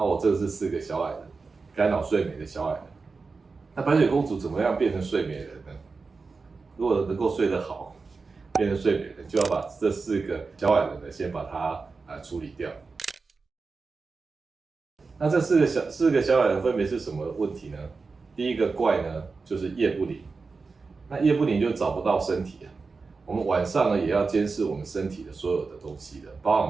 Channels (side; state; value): left; quieter; 4.4 dB